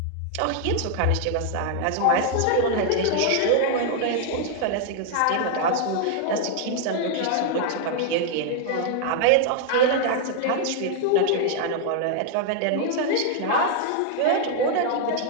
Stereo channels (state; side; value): different; both; correlation 0.00